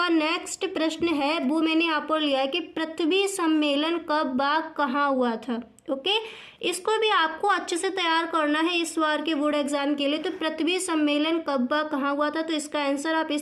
नेक्स्ट प्रश्न है वो मैंने यहाँ पर लिया है कि पृथ्वी सम्मेलन कब व कहाँ हुआ था। ओके, इसको भी आपको अच्छे से तैयार करना है इस बार के बोर्ड एग्जाम के लिए। तो पृथ्वी सम्मेलन कब व कहाँ हुआ था, तो इसका आंसर आप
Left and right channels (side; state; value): both; identical; correlation 1.00